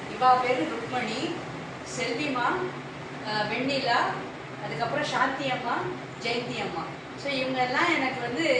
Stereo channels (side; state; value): both; identical; correlation 1.00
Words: இவா பேர் ருக்மணி, செல்விமா, வெண்ணிலா, அதுக்கப்புறம் சாந்தி அம்மா, ஜெயந்தி அம்மா. ஸோ இவங்கெல்லாம் எனக்கு